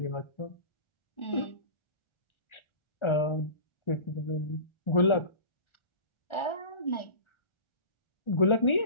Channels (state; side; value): late; right; 1.4 ms